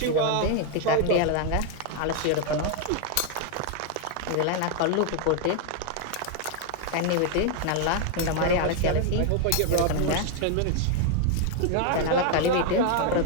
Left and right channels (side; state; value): both; different; correlation 0.00